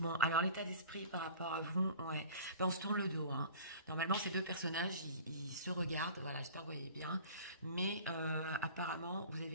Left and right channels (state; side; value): inverted; both; correlation -0.43